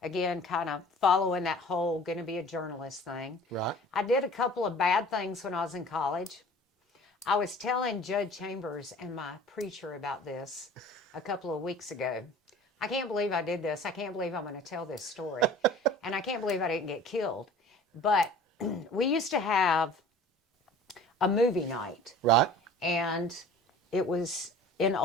Again, kind of following that whole going to be a journalist thing. Right. I did a couple of bad things when I was in college. I was telling Judge Chambers and my preacher about this a couple of weeks ago. I can't believe I did this. I can't believe I'm going to tell this story. And I can't believe I didn't get killed. But we used to have a movie night. Right. And it was in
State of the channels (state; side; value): normal; both; correlation 0.44